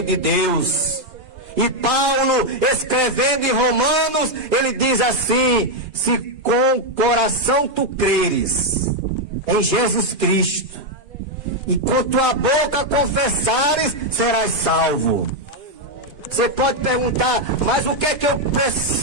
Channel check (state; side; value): late; left; 2.5 ms